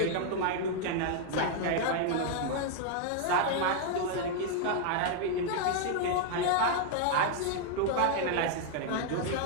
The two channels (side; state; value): both; different; correlation 0.00